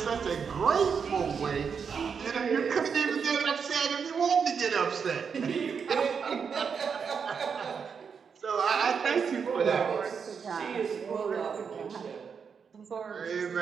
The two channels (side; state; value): left; quieter; 6.3 dB